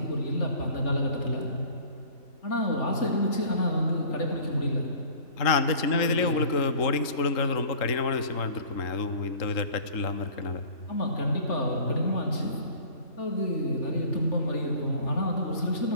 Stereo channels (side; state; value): right; late; 3.7 ms